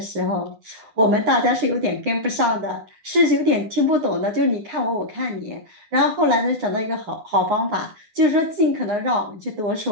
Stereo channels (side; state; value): left; late; 9.7 ms